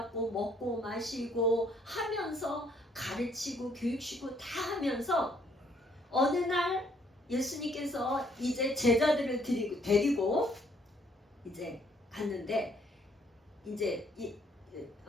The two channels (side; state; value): both; normal; correlation 0.66